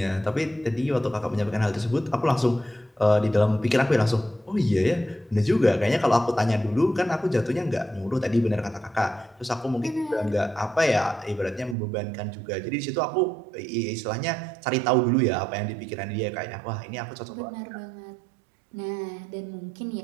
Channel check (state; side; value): drops out; left; at 11.8 s